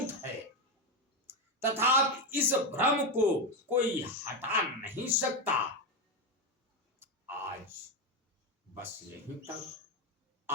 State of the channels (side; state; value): both; normal; correlation 0.11